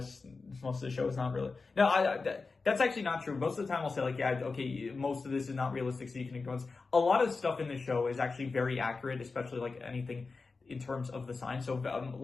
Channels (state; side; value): quieter; right; 4.2 dB